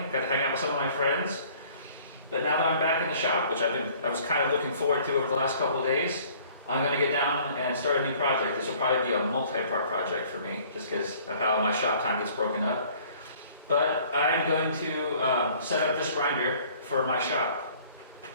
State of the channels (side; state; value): both; inverted; correlation -0.54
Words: got to hang out with some of my friends. But now that I'm back in the shop, which I was kind of looking forward to over the last couple of days, I'm going to get down and start a new project. This will probably be a multi-part project for me, just because of how my shop time gets broken up. But I'm going to set up this grinder for my shop.